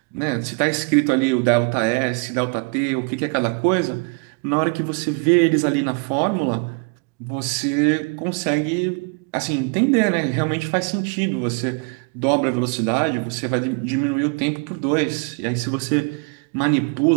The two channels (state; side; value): quieter; left; 36.0 dB